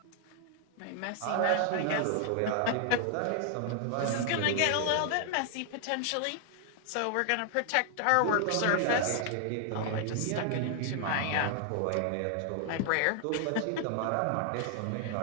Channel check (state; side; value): different; both; correlation 0.00